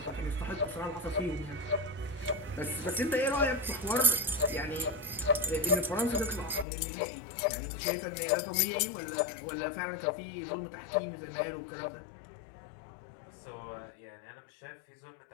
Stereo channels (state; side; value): drops out; right; at 6.7 s